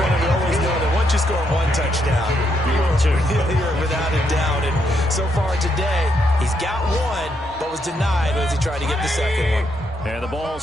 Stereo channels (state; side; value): normal; both; correlation 0.77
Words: we always know that once you score 1 touchdown, you're without a doubt. And so far today, he's got 1, but was denied as he tried to get the second one. And the ball